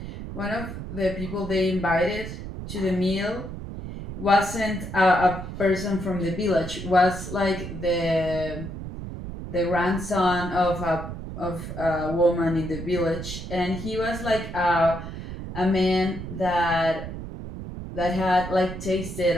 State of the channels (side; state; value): right; noise; rumble, 9 dB below the sound